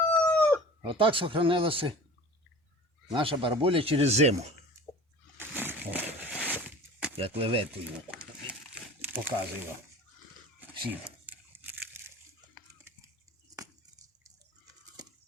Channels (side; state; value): both; normal; correlation 0.40